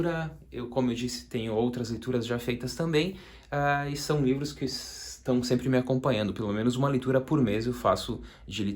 Eu, como eu disse, tenho outras leituras já feitas também, e são livros que estão sempre me acompanhando. Pelo menos uma leitura por mês eu faço de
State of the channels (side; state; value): both; identical; correlation 1.00